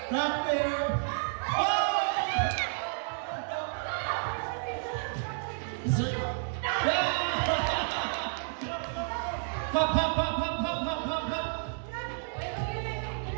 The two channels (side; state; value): left; silent; digital silence